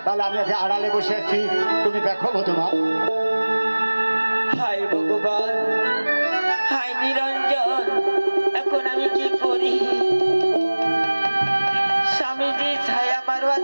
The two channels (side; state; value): both; inverted; correlation -1.00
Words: তাহলে আমি আগে আড়ালে বসে আছি, তুমি দেখো বধুমা। হায় ভগবান, হায় নিরঞ্জন, এখন আমি কি করি? স্বামীজি ছায়া মারবার